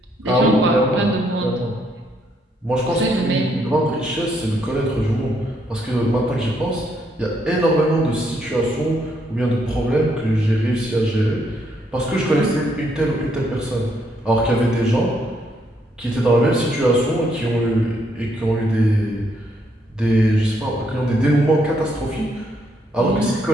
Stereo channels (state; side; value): normal; both; correlation 0.73